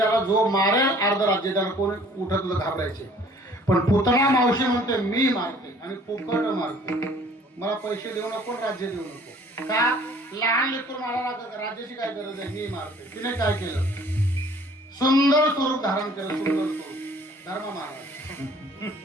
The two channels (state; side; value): normal; both; correlation 0.54